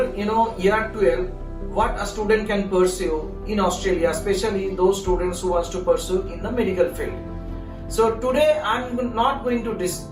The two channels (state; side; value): identical; both; correlation 1.00